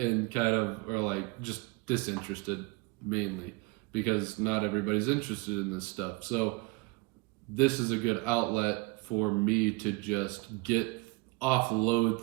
kind of are like just disinterested mainly because not everybody's interested in this stuff. So this is a good outlet for me to just offload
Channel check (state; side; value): quieter; left; 24.3 dB